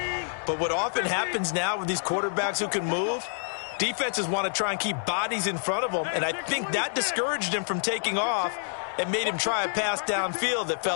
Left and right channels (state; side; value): silent; right; digital silence